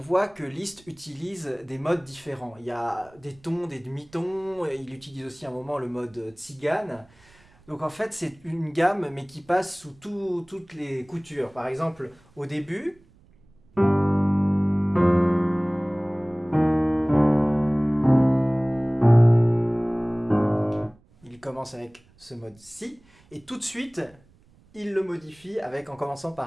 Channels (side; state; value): right; noise; rumble, 29 dB below the sound